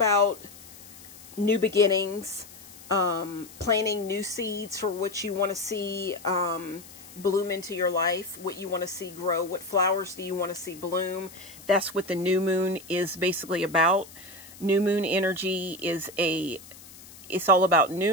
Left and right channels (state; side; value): noise; left; hiss, 19 dB below the sound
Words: new beginnings, planting new seeds for what you want to see bloom into your life, what you want to see grow, what flowers do you want to see bloom. That's what the new moon is basically about. New moon energy is it's all about